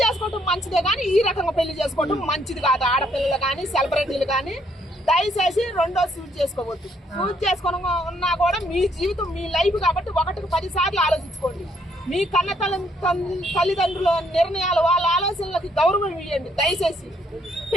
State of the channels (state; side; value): normal; both; correlation 0.69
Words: చేసుకోవటం మంచిదే కానీ ఈ రకంగా పెళ్లి చేసుకోవటం మంచిది కాదు. ఆడపిల్లలు కానీ సెలబ్రిటీలు కానీ దయచేసి రెండో సూట్ చేసుకోవద్దు. సూట్ చేసుకొని ఉన్నా కూడా మీ జీవితం మీ లైఫ్ కాబట్టి 1కి 10 సార్లు ఆలోచించుకోండి. మీ కన్న తల్లిదండ్రుల నిర్ణయాలు వాళ్ళ ఆలోచనలకి గౌరవం ఇవ్వండి దయచేసి.